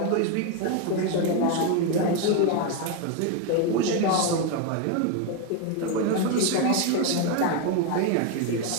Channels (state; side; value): different; both; correlation 0.02